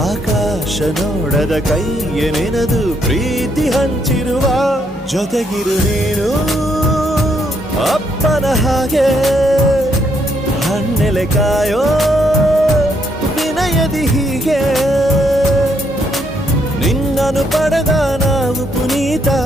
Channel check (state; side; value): normal; both; correlation 0.74